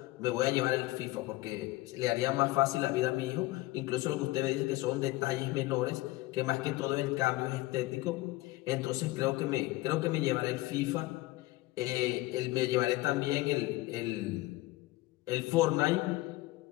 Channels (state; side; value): quieter; right; 19.5 dB